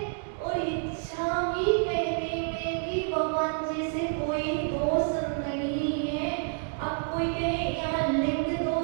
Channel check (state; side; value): silent; left; 59 dB below the other